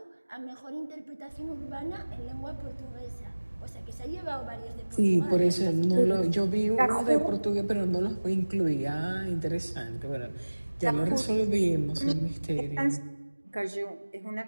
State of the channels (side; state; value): both; inverted; correlation -1.00